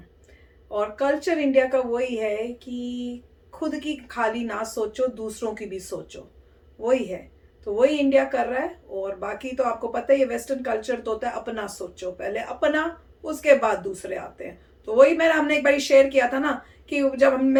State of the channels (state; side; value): identical; both; correlation 1.00